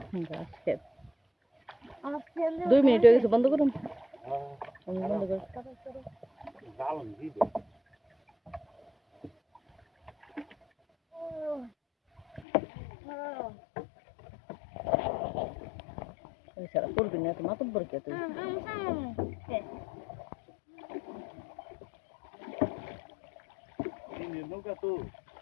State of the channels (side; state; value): right; drops out; at 12.5 s